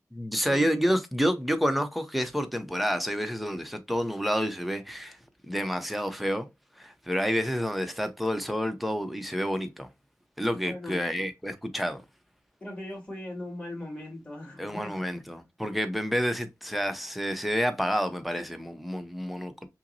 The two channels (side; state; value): both; normal; correlation 0.94